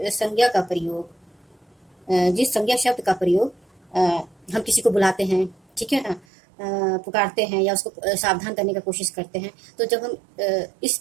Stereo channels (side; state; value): left; drops out; at 6.2 s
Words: संज्ञा शब्द का प्रयोग हम किसी को बुलाते हैं, ठीक है ना, पुकारते हैं या उसको सावधान करने का कोशिश करते हैं, तो जब हम इस